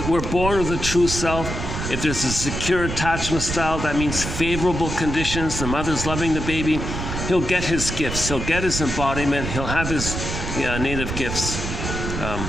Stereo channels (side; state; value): right; noise; rumble, 4 dB below the sound